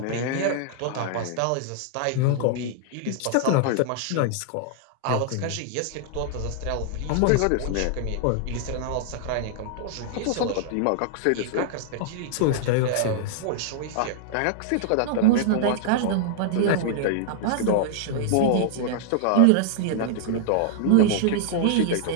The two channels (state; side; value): different; both; correlation -0.01